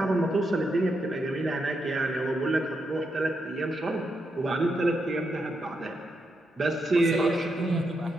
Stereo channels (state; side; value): normal; both; correlation 0.83